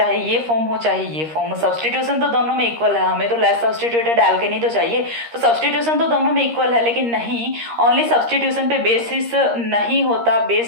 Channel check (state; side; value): late; left; 13 ms